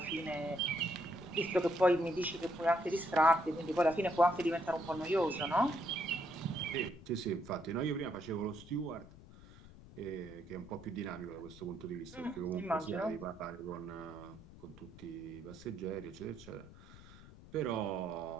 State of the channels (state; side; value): noise; left; rumble, 18 dB below the sound